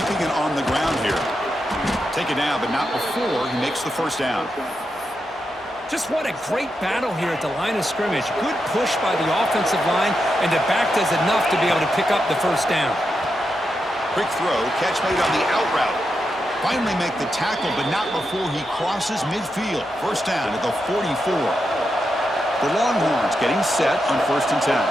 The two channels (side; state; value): both; normal; correlation 0.86